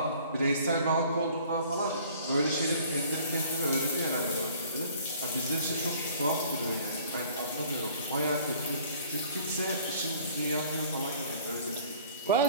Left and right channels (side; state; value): both; inverted; correlation -0.53